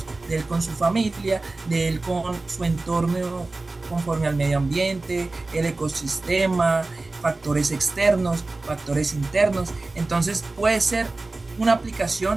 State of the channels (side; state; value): left; quieter; 3.3 dB